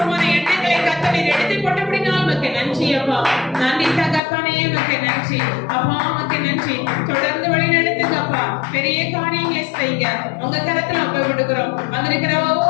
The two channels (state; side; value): drops out; right; at 4.2 s